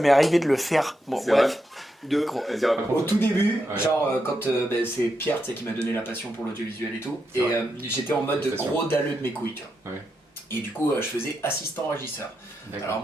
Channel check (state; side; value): normal; both; correlation 0.84